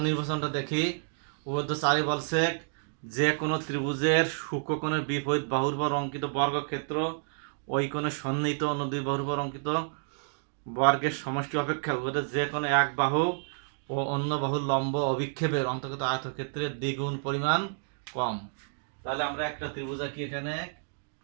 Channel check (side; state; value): left; silent; digital silence